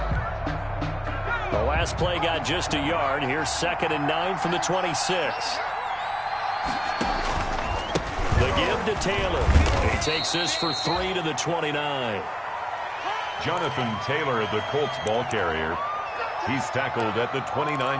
The last play got just a yard. Here's 2nd and 9 from the 26. The give to Taylor. He takes this for 3 to the 29. Jonathan Taylor, the Colts ball carrier. He's tackled at the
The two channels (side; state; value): both; identical; correlation 1.00